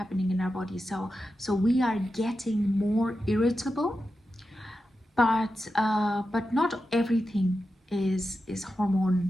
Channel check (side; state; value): both; normal; correlation 0.90